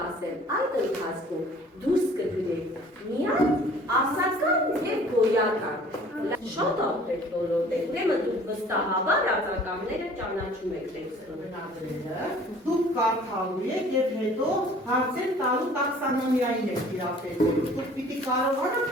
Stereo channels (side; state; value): both; normal; correlation 0.51